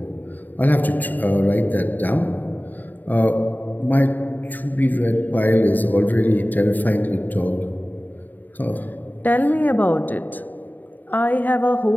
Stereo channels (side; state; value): right; late; 0.087 ms